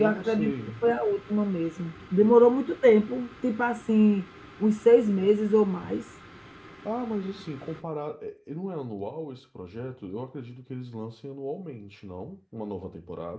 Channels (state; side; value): identical; both; correlation 1.00